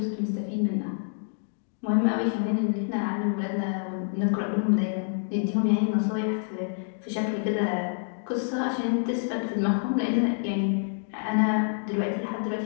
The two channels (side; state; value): right; silent; digital silence